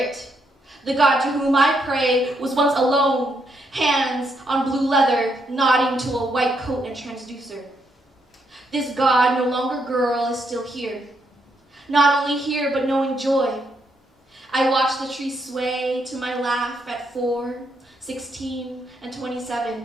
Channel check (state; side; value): normal; both; correlation 0.77